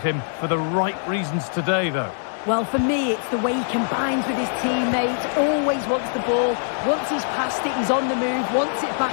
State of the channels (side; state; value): right; silent; digital silence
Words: for the right reasons today, though? Well, for me, it's the way he combines with his teammates, always wants the ball. Once he's passed it, he's on the move, wants it